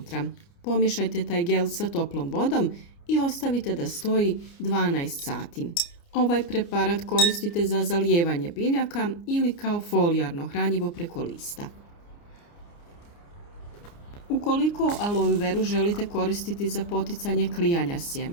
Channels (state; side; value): late; right; 29 ms